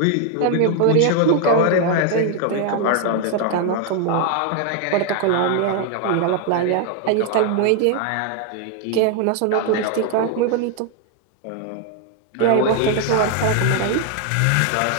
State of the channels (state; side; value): different; both; correlation 0.00